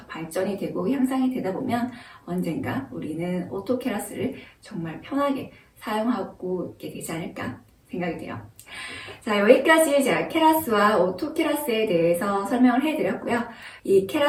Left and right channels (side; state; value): both; identical; correlation 1.00